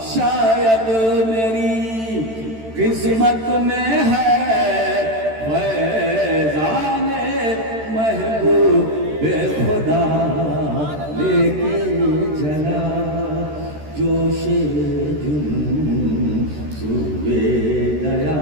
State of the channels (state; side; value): late; left; 13 ms